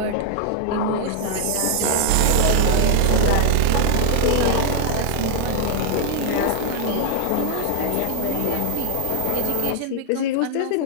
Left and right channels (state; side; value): different; both; correlation 0.00